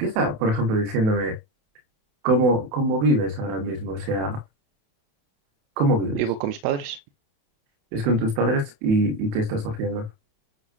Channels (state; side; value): late; left; 28 ms